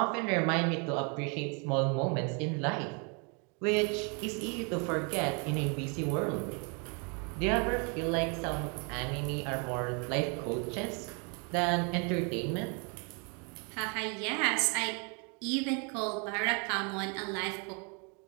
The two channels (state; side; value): quieter; left; 35.4 dB